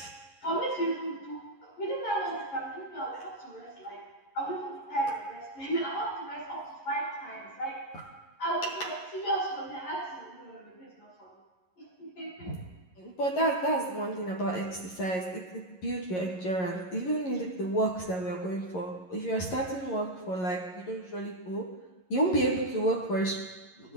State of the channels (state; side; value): late; right; 11 ms